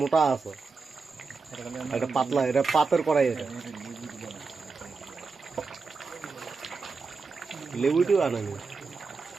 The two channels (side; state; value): left; quieter; 4.5 dB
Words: মোটা আছে, এটা পাতলা, এটা পাতের কড়াই, এটা লেবুটিও আনেনি